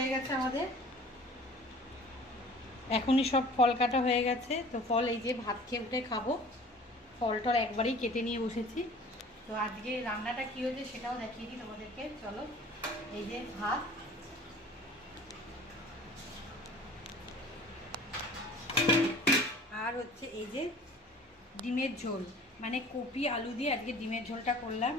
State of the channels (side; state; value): both; normal; correlation 0.47